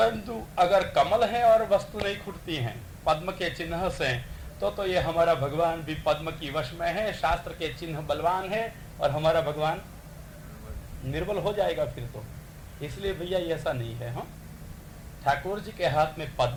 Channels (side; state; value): both; identical; correlation 1.00